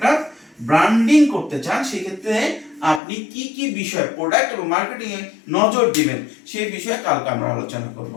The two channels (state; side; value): drops out; right; at 3.0 s